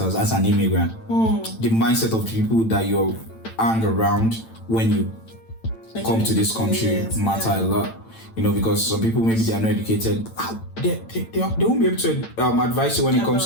as an immigrant. The mindset of the people that you hang around when you come to this country matter a lot. Because some people, maybe they are not educated. They won't be able to advise you when it comes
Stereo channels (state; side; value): late; right; 8.9 ms